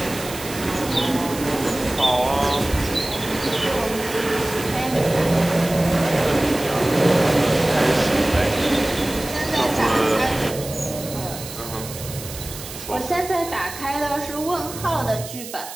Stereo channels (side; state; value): right; noise; hiss, 12 dB below the sound